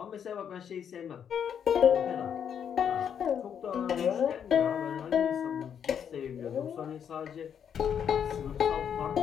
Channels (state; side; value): quieter; right; 8.2 dB